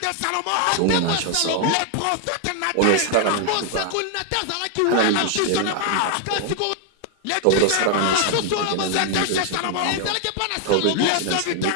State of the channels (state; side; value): different; both; correlation 0.00